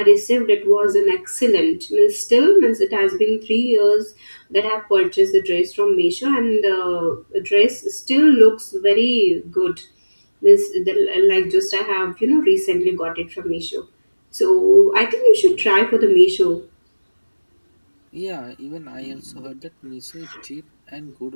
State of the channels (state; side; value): inverted; both; correlation -1.00